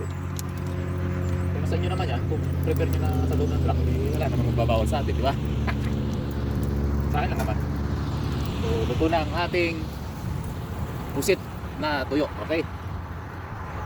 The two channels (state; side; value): identical; both; correlation 1.00